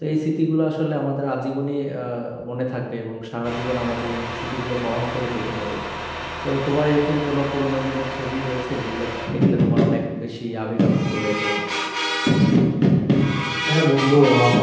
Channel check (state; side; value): identical; both; correlation 1.00